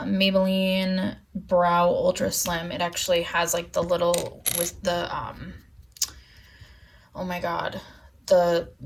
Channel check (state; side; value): identical; both; correlation 1.00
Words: Brow Ultra Slim. It actually has like the little, with the, oh my god, the